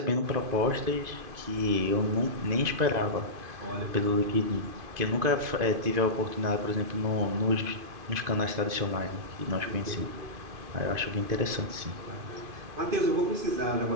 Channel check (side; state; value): left; late; 2.5 ms